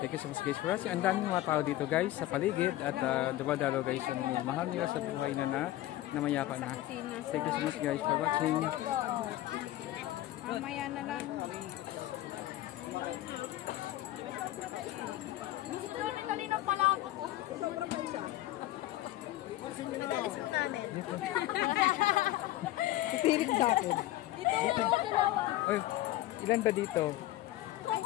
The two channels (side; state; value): right; quieter; 15.4 dB